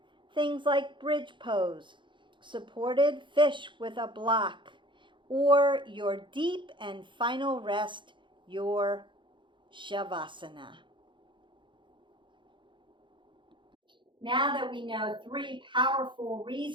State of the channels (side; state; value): left; late; 0.23 ms